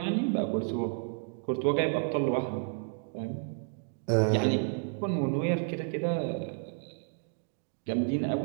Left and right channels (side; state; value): left; silent; 57 dB below the other